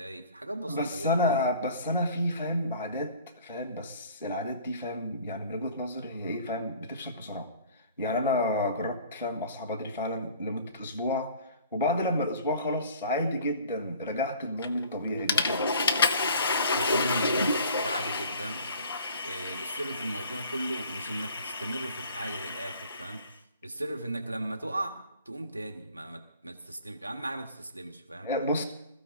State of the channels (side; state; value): both; inverted; correlation -0.50